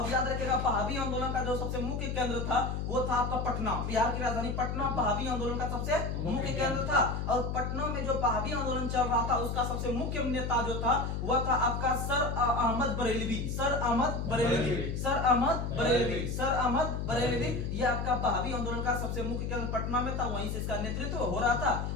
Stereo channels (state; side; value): noise; left; hum, 2 dB below the sound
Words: याद रखिएगा, बहावी आंदोलन का जो सबसे मुख्य केंद्र था वो था आपका पटना, बिहार की राजधानी पटना बहावी आंदोलन का सबसे मुख्य केंद्र था। और पटना में जो बहावी आंदोलन चल रहा था उसका सबसे मुख्य नेता जो था वह था आपका सर अहमद बरेलवी। ये आपका बहावी आंदोलन का सबसे मुख्य केंद्र पटना में था, वहीं से इसका नेतृत्व हो रहा था।